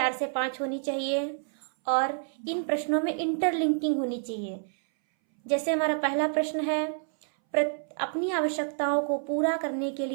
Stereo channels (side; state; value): left; silent; 59 dB below the other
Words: से 5 होनी चाहिए और इन प्रश्नों में इंटरलिंकिंग होनी चाहिए। जैसे हमारा पहला प्रश्न है अपनी आवश्यकताओं को पूरा करने के